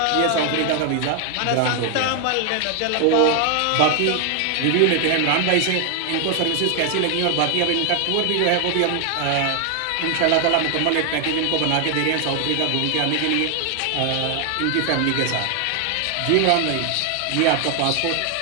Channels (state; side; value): different; both; correlation 0.00